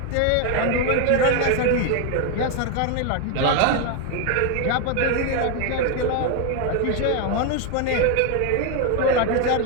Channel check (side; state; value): both; different; correlation 0.01